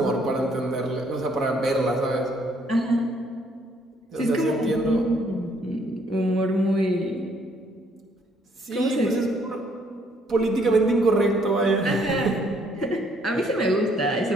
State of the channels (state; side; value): normal; both; correlation 0.67